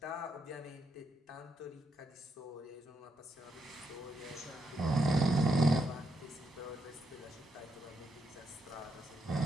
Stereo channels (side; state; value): both; normal; correlation 0.79